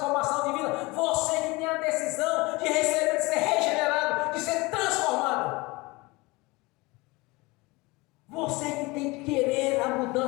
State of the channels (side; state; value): right; quieter; 23.7 dB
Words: de vida, você que tem a decisão de receber, de ser regenerado, de ser transformado. Você que tem que querer a